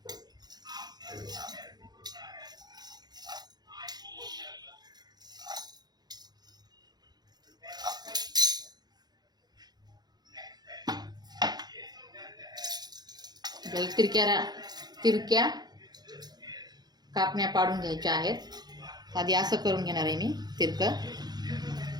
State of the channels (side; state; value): left; late; 0.20 ms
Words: तिरक्या कापण्या पाडून घ्यायच्या आहेत. आधी असं करून घेणार आहे मी तिरकं.